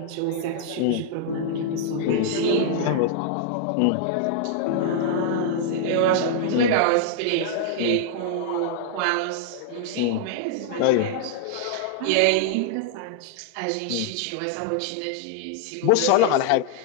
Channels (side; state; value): both; different; correlation -0.01